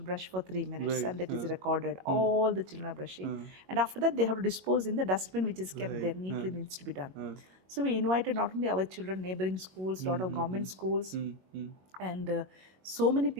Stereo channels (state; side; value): late; left; 22 ms